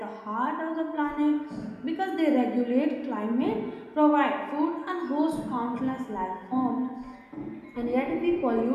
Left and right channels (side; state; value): both; identical; correlation 1.00